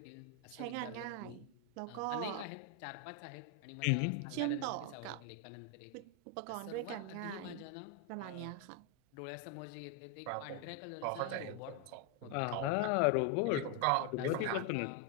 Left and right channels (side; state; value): both; different; correlation 0.01